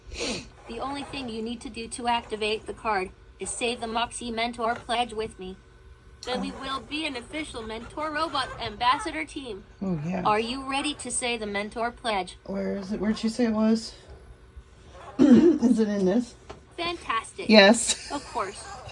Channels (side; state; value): both; identical; correlation 1.00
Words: The only thing you need to do to activate the card is say the Moxie Mentor pledge with me. Then we will be an official Mentor Robot Ambassador team. Oh yeah. Are you ready to say the Mentor pledge? Where is it? Where'd you say it was? Is it in this? Fantastic. Yes. Of course.